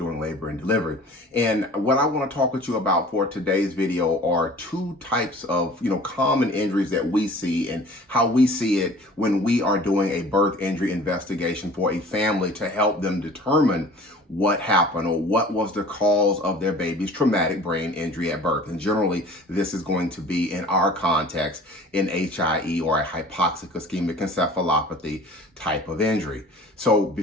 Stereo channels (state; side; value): normal; both; correlation 0.46